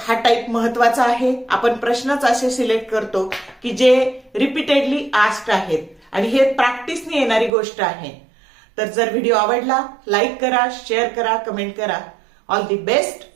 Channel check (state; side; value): drops out; left; at 7.5 s